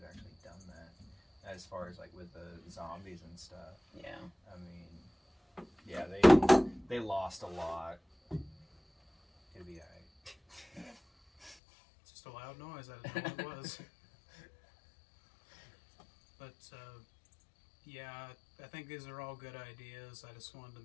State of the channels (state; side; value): drops out; right; at 11.6 s